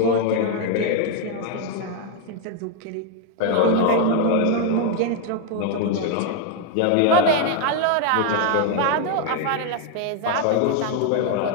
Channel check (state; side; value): different; both; correlation 0.00